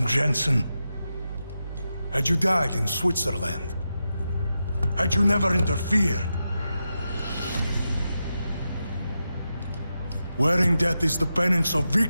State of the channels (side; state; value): both; inverted; correlation -0.89